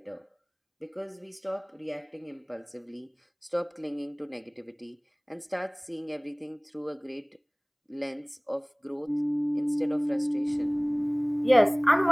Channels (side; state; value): both; identical; correlation 1.00